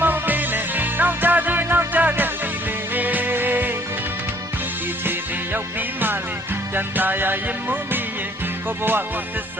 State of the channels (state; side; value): normal; both; correlation 0.60